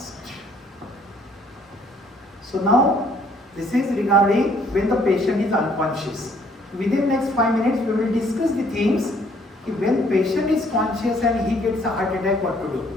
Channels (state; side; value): normal; both; correlation 0.63